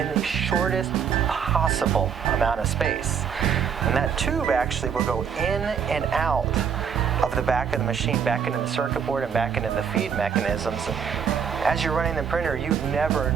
the shortest possible amount of space. And that tube actually will go in and out of the back of the machine, back into the circuit board and back into the feed mechanisms. And as you're running the printer, you never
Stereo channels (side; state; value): left; quieter; 7.2 dB